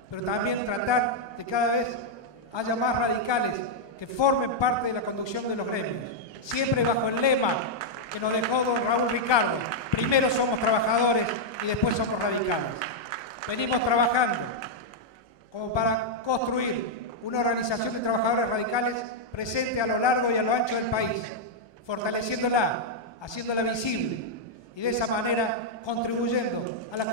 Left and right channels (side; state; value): right; late; 1.2 ms